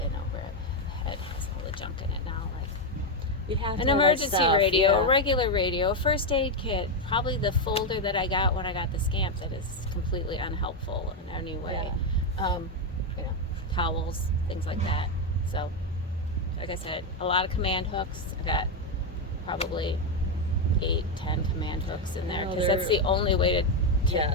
over the head has all the junk in it now. Like We have an emergency radio, a regular radio, a first aid kit, probably the folder that I got when I got the Scamp that is completely unhelpful in any way. Towels, things like that. So, like I said, a lot of command hooks. I got probably 8-10 command hooks in there, because that's the only way to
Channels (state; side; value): normal; both; correlation 0.05